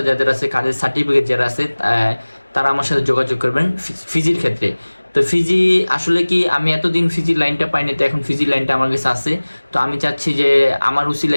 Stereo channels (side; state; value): both; inverted; correlation -1.00